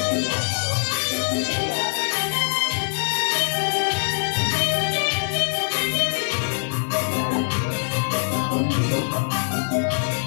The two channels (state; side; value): silent; right; digital silence